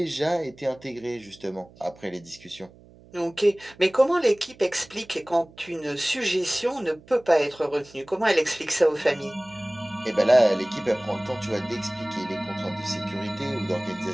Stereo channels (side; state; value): right; noise; hum, 24 dB below the sound